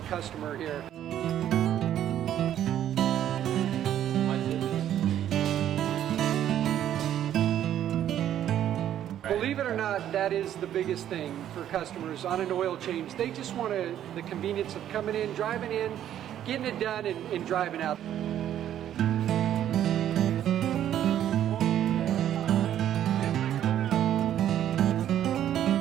customer here. Believe it or not, that is the biggest thing for customers on an oil change. They just want the convenience of coming in, driving in, getting it done, and driving out.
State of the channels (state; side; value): quieter; left; 11.0 dB